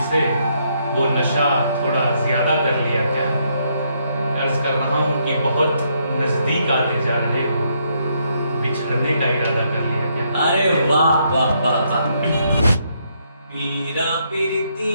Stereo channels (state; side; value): inverted; both; correlation -0.74